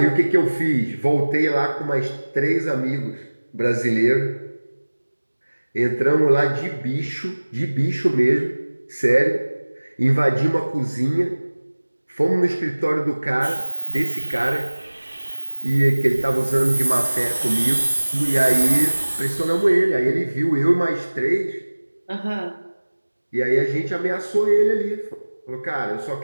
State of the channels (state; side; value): inverted; both; correlation -1.00